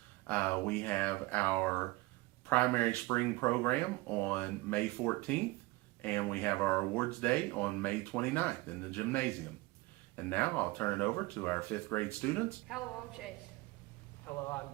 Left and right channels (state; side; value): quieter; left; 21.3 dB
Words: We have our primary spring program on May 14th, and we have our awards day on May 29th in the gymnasium. And now I'll turn it over to our 5th grade students. Hello, I'm Chase. Hello, I'm